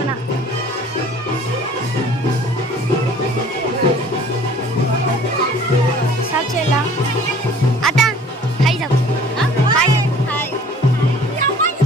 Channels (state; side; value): normal; both; correlation 0.51